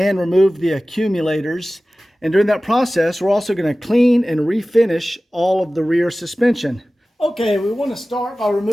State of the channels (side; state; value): both; normal; correlation 0.97